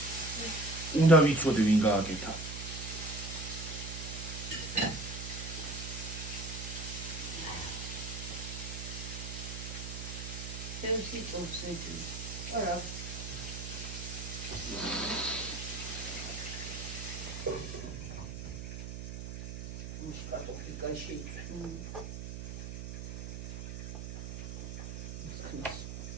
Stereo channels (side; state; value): right; noise; hum, 7 dB below the sound